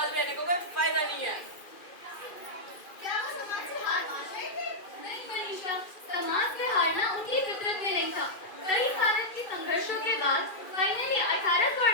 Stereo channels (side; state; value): right; late; 2.5 ms